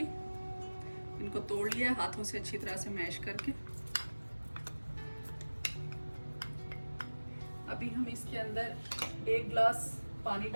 इनको तोड़ लिया हाथों से अच्छी तरह से मैश करके। अभी हम इसके अंदर 1 गिलास पानी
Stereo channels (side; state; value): both; inverted; correlation -1.00